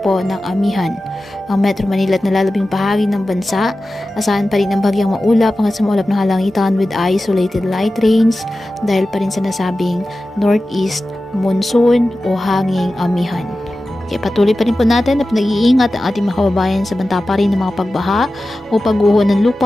po ng amihan. Ang Metro Manila at nalalabing bahagi ng bansa, asahan pa rin ang bagyang maulap hanggang sa maulap na kalangitan with isolated light rains dahil pa rin sa nasabing northeast monsoon o hanging amihan. Kaya patuloy pa rin po natin na pinag-iingat ang ating mga kababayan sa banta pa rin ng mga pagbaha o pagguho ng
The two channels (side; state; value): both; normal; correlation 0.94